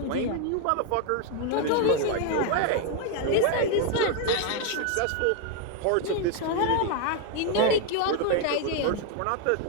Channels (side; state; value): both; different; correlation 0.01